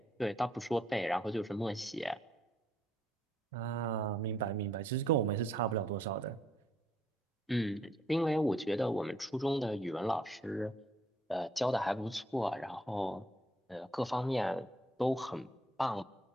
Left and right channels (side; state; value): both; normal; correlation 0.68